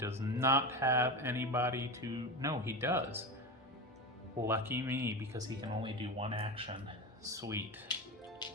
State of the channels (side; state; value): both; normal; correlation 0.22